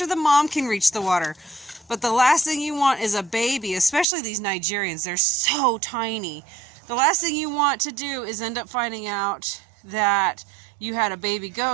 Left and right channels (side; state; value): left; drops out; at 4.0 s